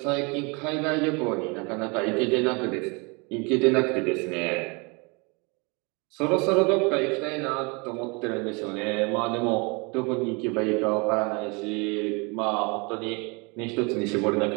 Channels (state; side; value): quieter; left; 30.2 dB